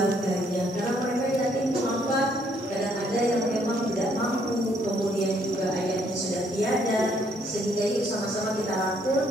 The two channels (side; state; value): both; normal; correlation 0.68